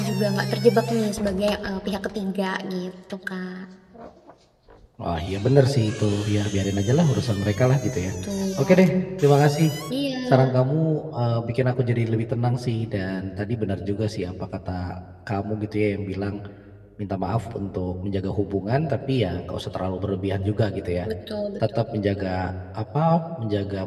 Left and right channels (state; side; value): identical; both; correlation 1.00